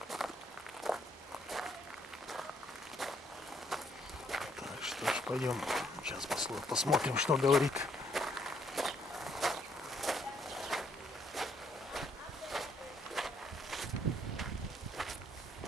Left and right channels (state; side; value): normal; both; correlation 0.69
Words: Так, что ж, пойдем. Сейчас посмотрим, что говорит.